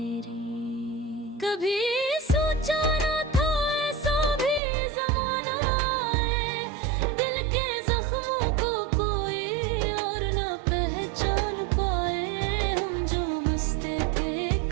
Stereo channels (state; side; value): drops out; left; at 4.6 s